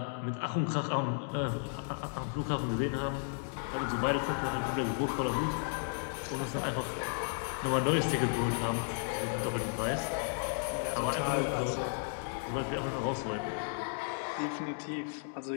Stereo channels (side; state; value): right; silent; 55 dB below the other